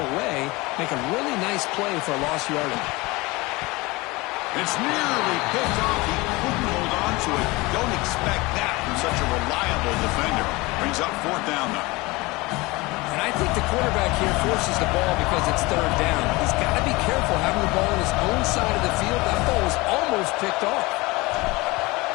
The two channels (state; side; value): quieter; right; 22.9 dB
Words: away, make a really nice play for a lost yardage. It's nearly picked off. He couldn't hold on to it. Don't expect that from such a reliable defender. Brings up 4th down, though. And I think the quarterback here forces the ball because it's 3rd down. He's got to be careful having the ball on his own side of the field. That ball was almost picked off.